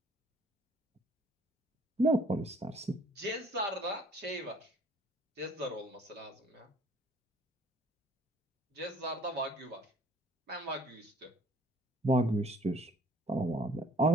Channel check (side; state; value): both; normal; correlation 0.58